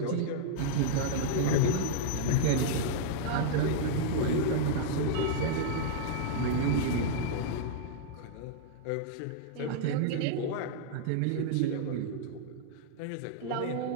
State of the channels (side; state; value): both; different; correlation -0.01